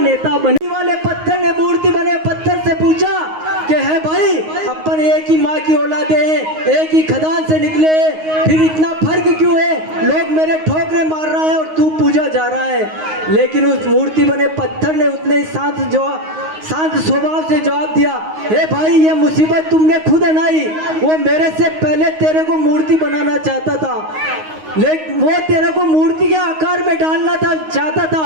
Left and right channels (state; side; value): late; left; 9.5 ms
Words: बने। वाले पत्थर ने मूर्ति बने पत्थर से पूछा कि है भाई, अपन एक ही माँ की औलादे हैं, एक ही खदान से निकले, फिर इतना फर्क क्यों है? लोग मेरे ठोकरे मार रहा है और तू पूजा जा रहा है। लेकिन उस मूर्ति बने पत्थर ने उतने ही शांत स्वभाव से जवाब दिया, हे भाई, ये मुसीबत तुमने खुद बनाई, वो मेरे से पहले तेरे को मूर्ति बनाना चाहता था, लेकिन वो तेरे को मूर्ति के आकार में डालना चाहता